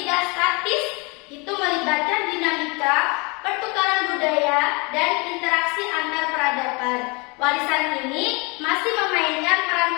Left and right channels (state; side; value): quieter; right; 29.3 dB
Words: tidak statis, itu melibatkan dinamika, pertukaran budaya, dan interaksi antar peradaban. Warisan ini masih memainkan peran